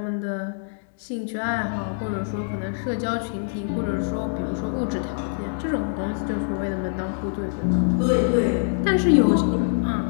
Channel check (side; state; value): right; silent; 62 dB below the other